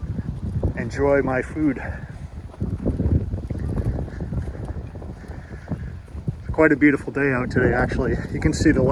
enjoy my food. Quite a beautiful day out today, actually. You can see the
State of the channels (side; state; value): both; identical; correlation 1.00